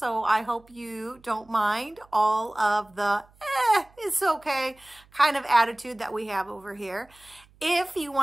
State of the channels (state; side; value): noise; right; hum, 29 dB below the sound